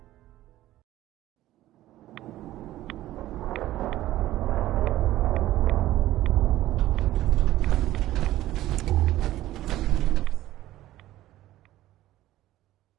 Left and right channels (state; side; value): quieter; left; 14.9 dB